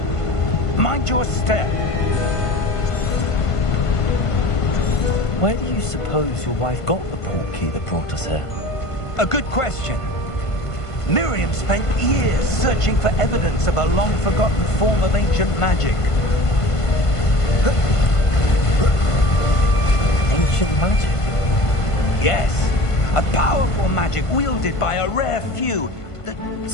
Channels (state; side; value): late; right; 1.5 ms